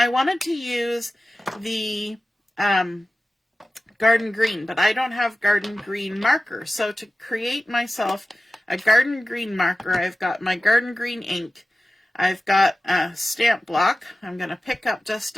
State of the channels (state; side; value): normal; both; correlation 0.95